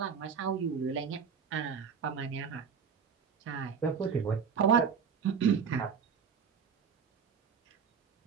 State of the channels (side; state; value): left; quieter; 6.6 dB